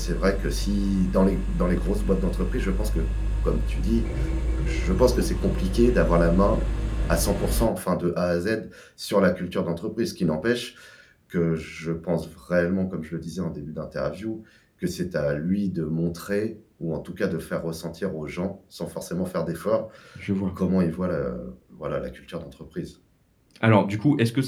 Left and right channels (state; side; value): identical; both; correlation 1.00